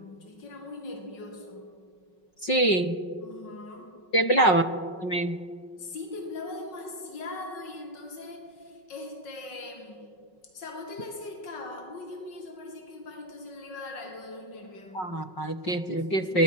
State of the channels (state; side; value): late; right; 5.4 ms